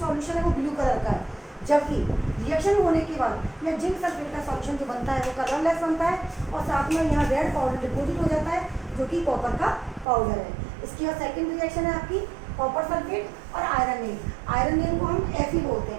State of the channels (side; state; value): left; drops out; at 10.1 s